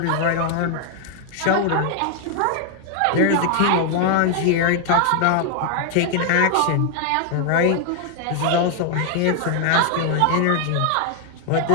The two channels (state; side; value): different; both; correlation 0.00